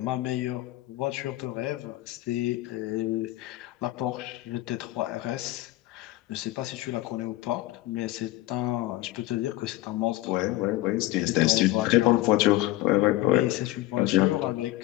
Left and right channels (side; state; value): right; quieter; 16.7 dB